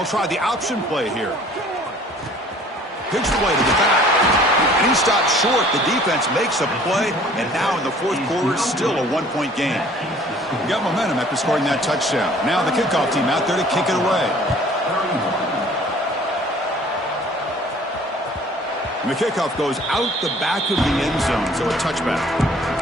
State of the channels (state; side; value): normal; both; correlation 0.53